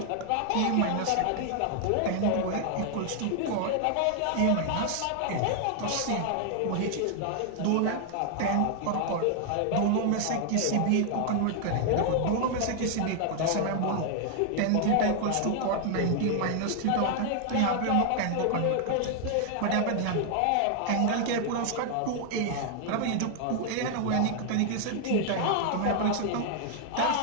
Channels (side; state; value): both; different; correlation 0.00